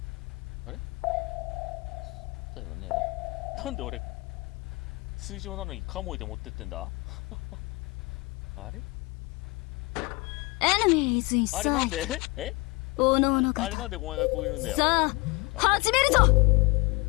あれそうだよね。なんで俺水上なのにカモイで持ってってんだあれ Enemy is in sight。あれなんでおのおのあれなんでお前がこう言うんだよ。さあ始めるぞ。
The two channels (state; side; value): quieter; right; 24.9 dB